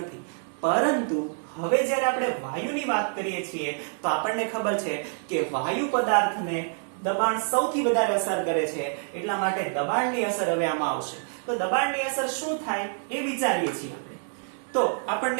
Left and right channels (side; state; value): left; silent; 60 dB below the other